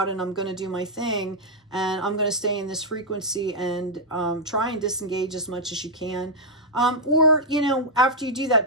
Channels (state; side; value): normal; both; correlation -0.04